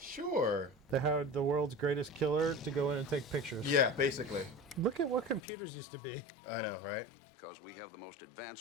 They hired the world's greatest killer to go in and take pictures. Yeah, basically. Look at what computers used to be. I know, right? Because we have the most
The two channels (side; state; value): right; drops out; at 5.4 s